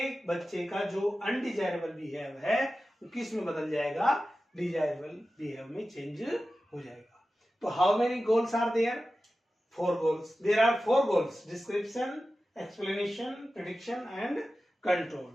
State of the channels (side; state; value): both; normal; correlation 0.94